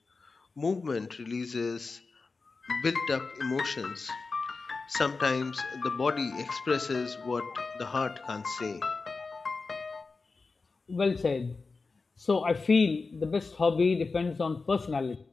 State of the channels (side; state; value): right; quieter; 4.1 dB